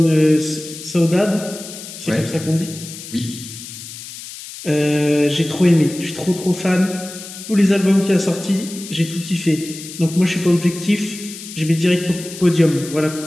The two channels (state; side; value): noise; left; hiss, 13 dB below the sound